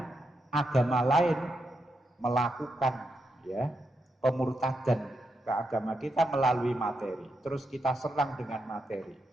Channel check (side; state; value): both; normal; correlation 0.83